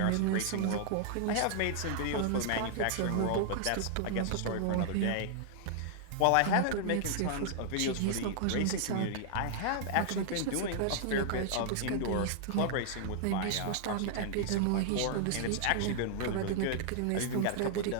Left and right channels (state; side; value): different; both; correlation -0.01